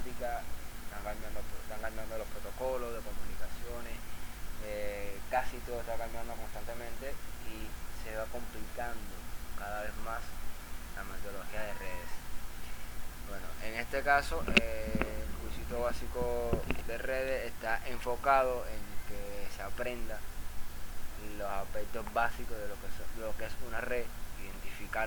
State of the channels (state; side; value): identical; both; correlation 1.00